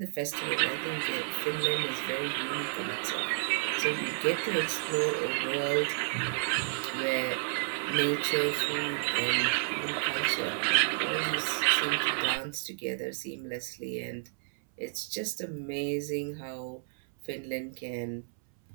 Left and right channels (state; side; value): silent; left; 57 dB below the other